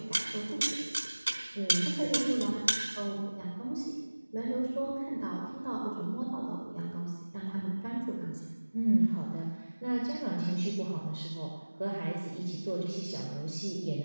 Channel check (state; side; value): inverted; both; correlation -1.00